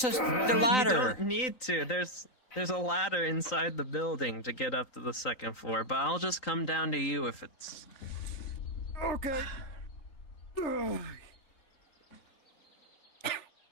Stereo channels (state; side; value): late; right; 3.8 ms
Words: the ladder. You don't need to. There's a ladder inside the building to get up to the second floor, but I'll just come down to you if it's. Okay.